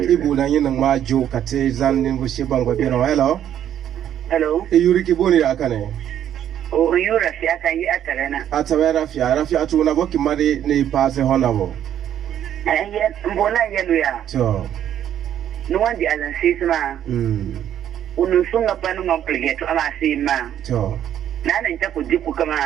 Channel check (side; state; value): left; quieter; 10.5 dB